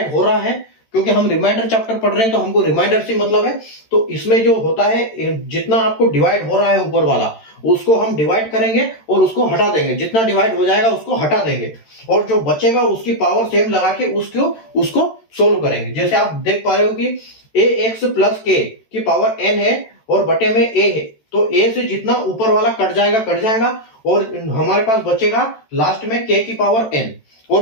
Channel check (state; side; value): late; right; 13 ms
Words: हो रहा है, क्योंकि हम रिमाइंडर चैप्टर पढ़ रहे हैं तो हमको रिमाइंडर से मतलब है, तो इसमें जो होता है जितना आपको डिवाइड हो रहा है ऊपर वाला उसको हम डिवाइड करेंगे और उसको हटा देंगे, जितना डिवाइड हो जाएगा उसको हटा देंगे और जो बचेगा उसकी पावर सेम लगा के उसको सोल्व करेंगे। जैसे आप देख पा रहे हो कि ए एक्स प्लस के की पावर एन है और बटे में ए है, तो ए से जितना ऊपर वाला कट जाएगा और हमारे पास बचेगा लास्ट में के की पावर एन,